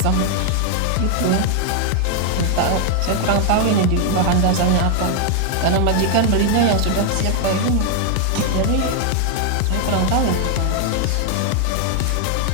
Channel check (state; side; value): different; both; correlation 0.00